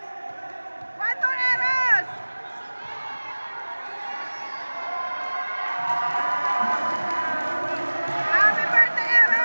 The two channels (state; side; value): inverted; both; correlation -1.00